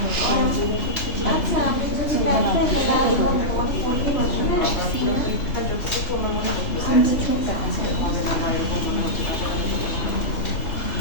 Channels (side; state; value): right; late; 3.2 ms